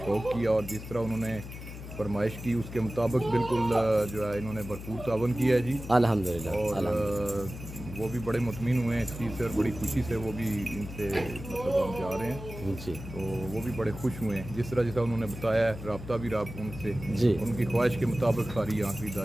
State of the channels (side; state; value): left; noise; hum, 11 dB below the sound